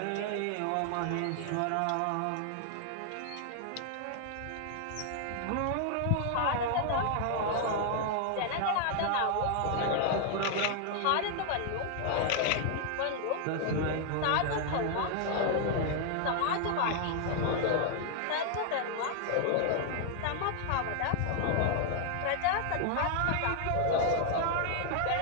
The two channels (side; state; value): both; different; correlation 0.00